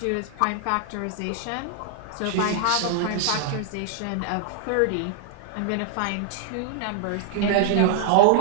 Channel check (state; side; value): different; both; correlation 0.00